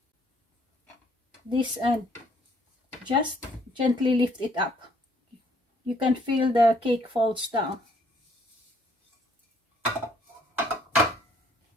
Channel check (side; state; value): both; normal; correlation 0.64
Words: this, and just gently lift it up. You can feel the cake falls down.